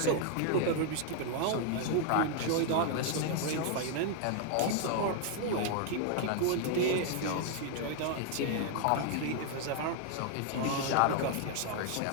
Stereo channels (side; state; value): both; different; correlation 0.00